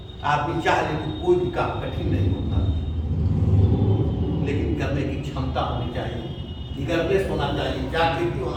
आदमी चाह ले तो कोई भी काम कठिन नहीं होता, लेकिन करने की क्षमता होनी चाहिए, निगरनेस होना चाहिए, जागृति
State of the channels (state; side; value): identical; both; correlation 1.00